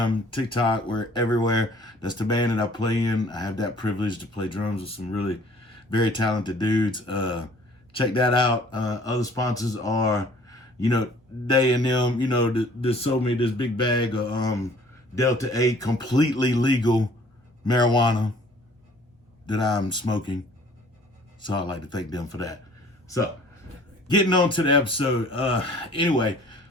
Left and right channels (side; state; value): both; normal; correlation 0.54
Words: TikTok, we're everywhere. That's the band that I play in. I have that privilege to play drums with some really very talented dudes. Check that out. Other sponsors are, they and them, they sold me this big bag of Delta 8 completely legal marijuana that I'm smoking. So I'd like to thank them for that. So, getting on to the episode. Anyway,